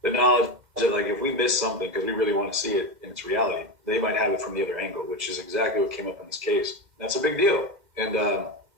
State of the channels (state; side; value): late; left; 2.1 ms